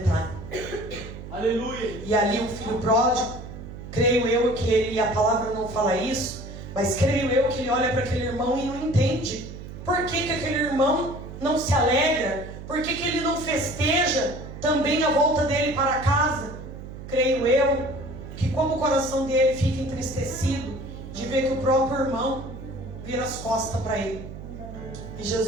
Aleluia. E ali o filho pródigo, creio eu que ele, a palavra não fala isso, mas creio eu que ele olha para aquele irmão e não entende. Por que que aquele irmão não se alegra? Por que que ele não festeja também a volta dele para casa? Creio eu que como o coração dele fica entristecido de ver que o próprio irmão vira as costas para ele. E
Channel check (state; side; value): noise; right; hum, 12 dB below the sound